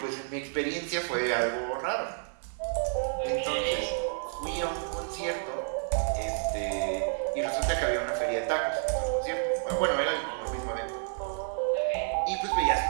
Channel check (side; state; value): left; silent; digital silence